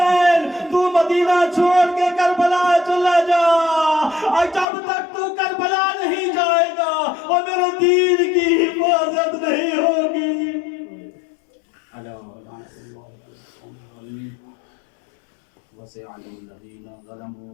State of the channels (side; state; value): right; drops out; at 4.7 s